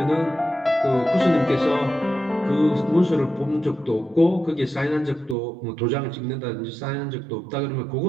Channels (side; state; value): left; drops out; at 5.4 s